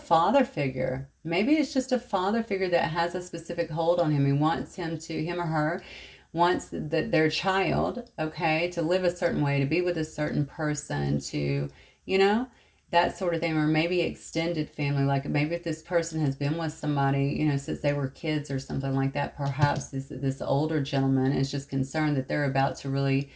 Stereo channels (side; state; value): both; identical; correlation 1.00